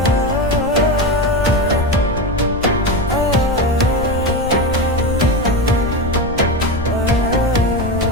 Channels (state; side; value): noise; left; rumble, 7 dB below the sound